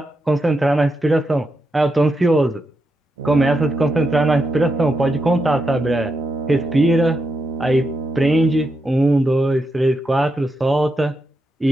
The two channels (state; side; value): normal; both; correlation 0.85